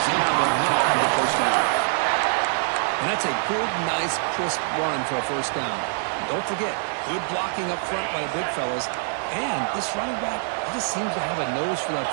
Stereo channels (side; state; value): left; silent; digital silence